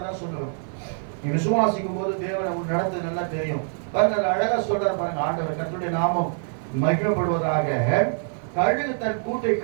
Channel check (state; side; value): silent; left; digital silence